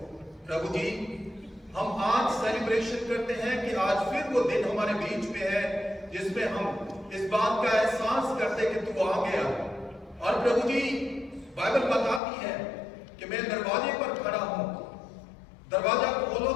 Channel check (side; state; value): right; drops out; at 12.2 s